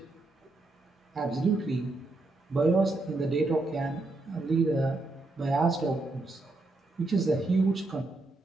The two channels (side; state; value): left; quieter; 3.0 dB